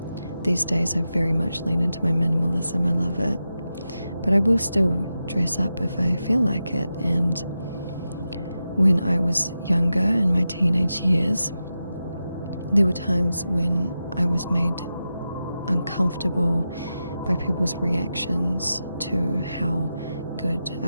These days I very much lean into my minimalism. I love it. But I will still dress up if I feel like it, and when I was younger, in my teenage years, there were times when I was made uncomfortable by people's reactions to how good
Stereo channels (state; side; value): inverted; both; correlation -0.90